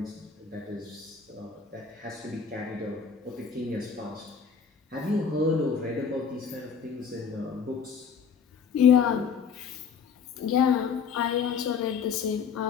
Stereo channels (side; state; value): right; quieter; 6.4 dB